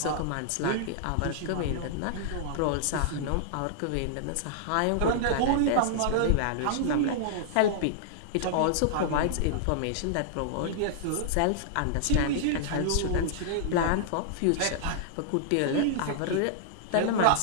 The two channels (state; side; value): different; both; correlation -0.01